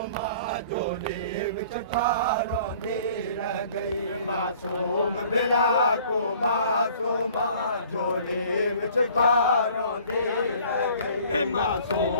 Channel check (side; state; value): both; inverted; correlation -0.52